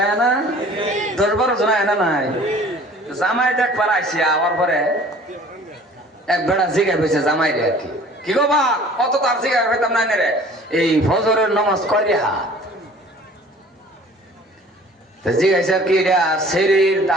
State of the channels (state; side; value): normal; both; correlation 0.49